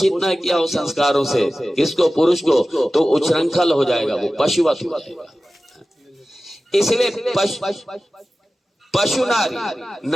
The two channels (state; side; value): normal; both; correlation 0.96